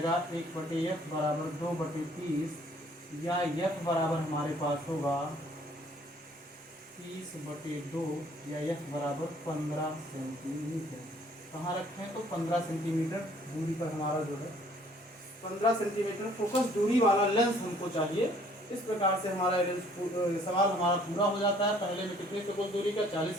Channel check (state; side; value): normal; both; correlation 0.59